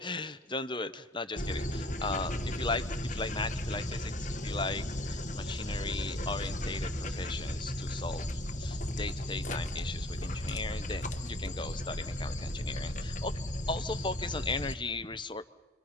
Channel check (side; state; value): both; normal; correlation 0.52